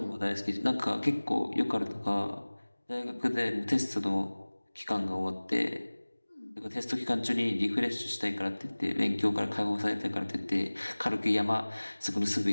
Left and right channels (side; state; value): both; inverted; correlation -1.00